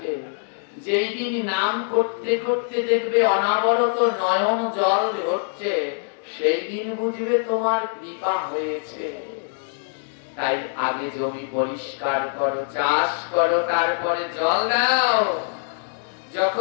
যেই দিন নাম করতে করতে দেখবে অনাবরত নয়ন জল হচ্ছে, সেই দিন বুঝবে তোমার কৃপা হয়েছে। তাই আগে জমি পরিষ্কার করো, চাষ করো, তারপরে জল দাও।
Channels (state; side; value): silent; right; 63 dB below the other